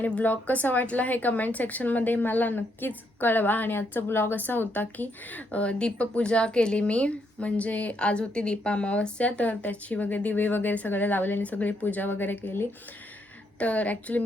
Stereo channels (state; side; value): normal; both; correlation 0.75